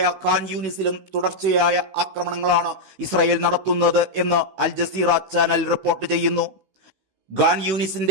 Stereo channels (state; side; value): late; left; 16 ms